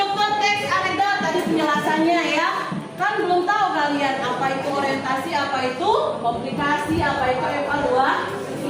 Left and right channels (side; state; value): both; identical; correlation 1.00